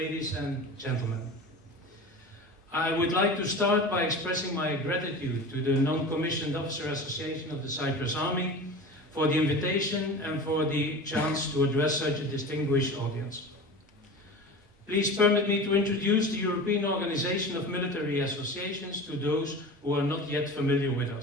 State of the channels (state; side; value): normal; both; correlation 0.34